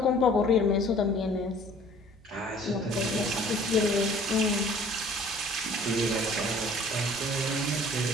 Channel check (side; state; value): both; normal; correlation 0.52